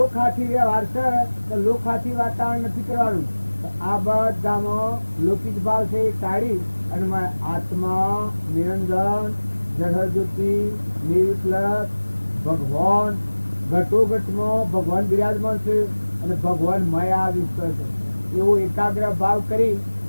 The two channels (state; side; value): inverted; both; correlation -1.00